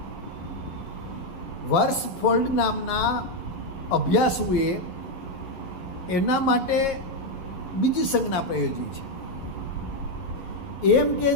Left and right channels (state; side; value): late; right; 11 ms